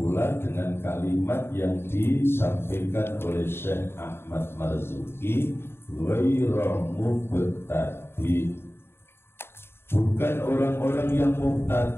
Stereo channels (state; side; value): late; right; 0.11 ms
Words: dengan kalimat yang disampaikan oleh Syekh Ahmad Marzuki, ghayra mubtadi'. Bukan orang-orang yang